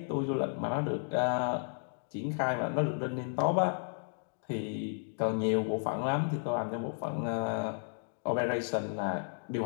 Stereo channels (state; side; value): silent; right; digital silence